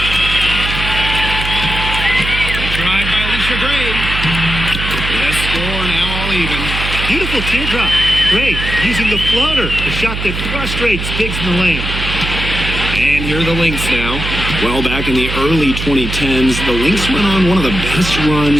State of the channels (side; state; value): right; noise; hum, 5 dB below the sound